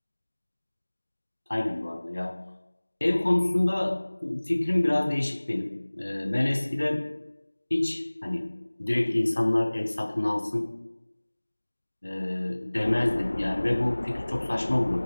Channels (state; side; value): inverted; both; correlation -1.00